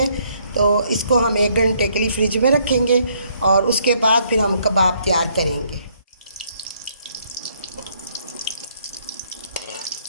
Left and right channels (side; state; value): both; inverted; correlation -0.68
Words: तो इसको हम 1 घंटे के लिए फ्रिज में रखेंगे और उसके बाद फिर हम कबाब तैयार करेंगे।